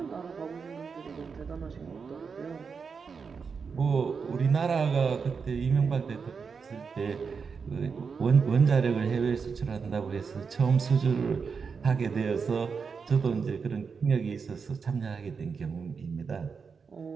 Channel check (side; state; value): left; quieter; 5.6 dB